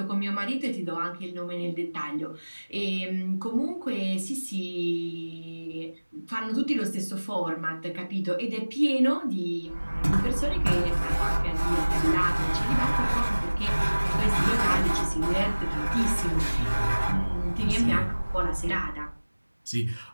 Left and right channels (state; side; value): inverted; both; correlation -1.00